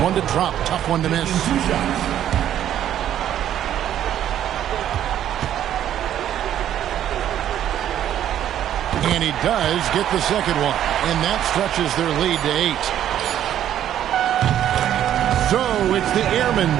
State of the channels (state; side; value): quieter; left; 11.0 dB